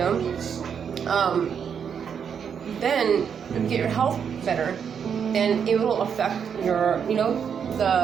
then you get your health better, then it will affect your,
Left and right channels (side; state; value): left; quieter; 7.3 dB